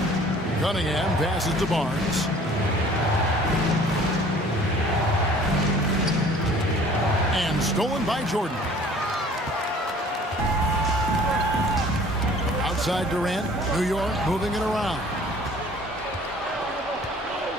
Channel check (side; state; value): both; normal; correlation 0.51